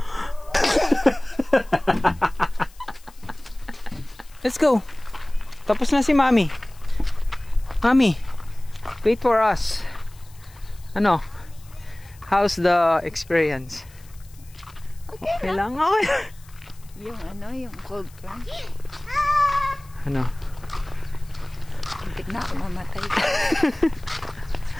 Let's go. Tapos na si Mommy. Mommy, wait for us. Ano? How's the experience? Okay lang. Okay. Yung cold plunge. Ano? Hindi na ako mamatay.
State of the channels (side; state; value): left; noise; hiss, 26 dB below the sound